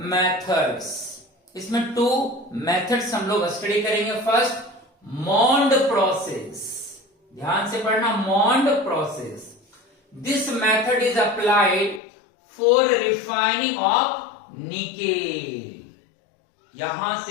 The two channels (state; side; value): drops out; right; at 12.0 s